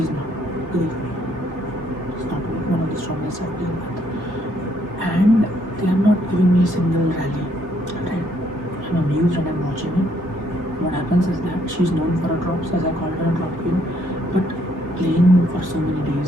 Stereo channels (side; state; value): left; late; 3.5 ms